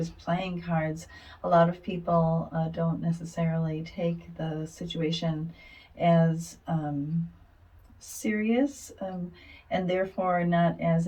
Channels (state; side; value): identical; both; correlation 1.00